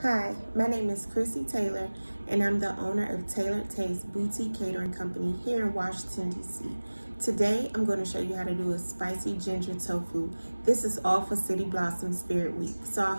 Hi, my name is Crissy Taylor, and I'm the owner of Tailored Taste Boutique Catering Company here in Washington, D.C. Today, I'm going to show you how to do a spicy ginger tofu. This is all for City Blossom Spirit Week, so I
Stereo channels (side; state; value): both; inverted; correlation -1.00